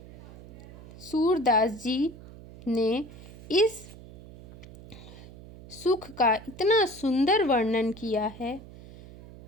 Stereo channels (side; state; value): right; noise; hum, 17 dB below the sound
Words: सूरदास जी ने इस सुख का इतना सुंदर वर्णन किया है।